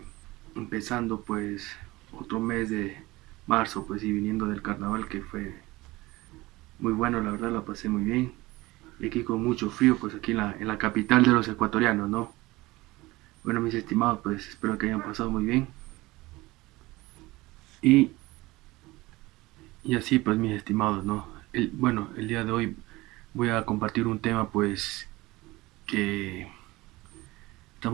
empezando pues otro mes de marzo pues y viniendo del carnaval que fue muy bueno, la verdad la pasé muy bien y aquí con mucho frío pues aquí en la capital de los ecuatorianos, ¿no? Bueno mis estimados pues espero que hayan pasado muy bien y, y así pues mis estimados, ¿no? Bueno, el día de hoy voy a compartir un tema pues que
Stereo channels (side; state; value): left; quieter; 20.3 dB